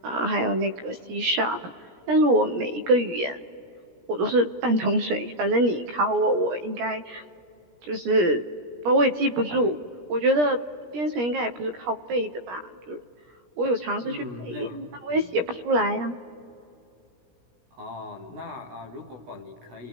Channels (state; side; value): late; left; 17 ms